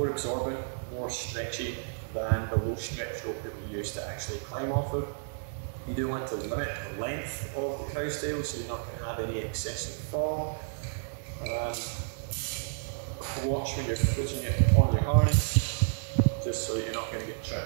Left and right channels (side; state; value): left; silent; digital silence